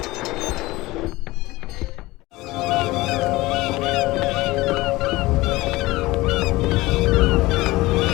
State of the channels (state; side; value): quieter; right; 19.9 dB